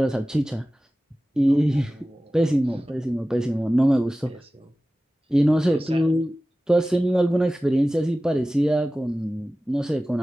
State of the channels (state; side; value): normal; both; correlation 0.96